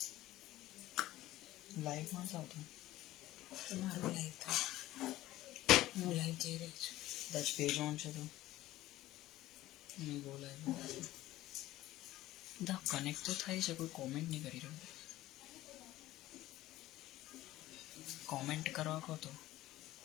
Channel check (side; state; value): right; quieter; 15.8 dB